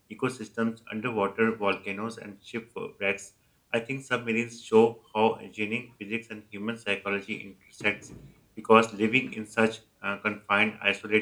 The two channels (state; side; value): identical; both; correlation 1.00